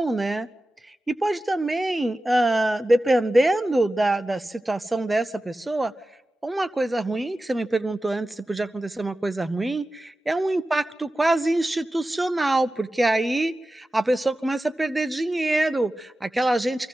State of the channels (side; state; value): both; normal; correlation 0.94